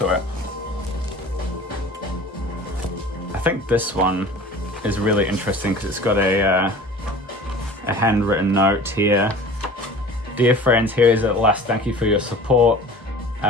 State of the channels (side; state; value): both; normal; correlation 0.42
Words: it. I think this one is really interesting because it's got a handwritten note here. Dear friends, here is at last, thank you for your support.